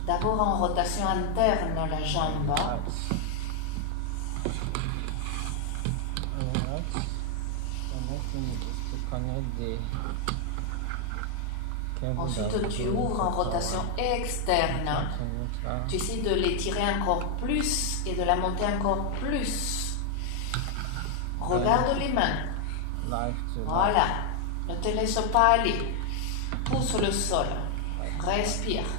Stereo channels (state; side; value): different; both; correlation 0.00